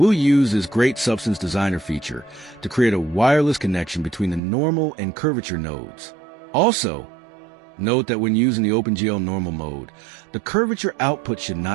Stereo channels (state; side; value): drops out; left; at 4.4 s